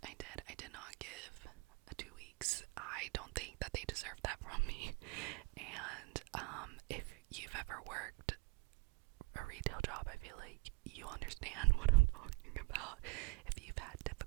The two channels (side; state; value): left; quieter; 26.2 dB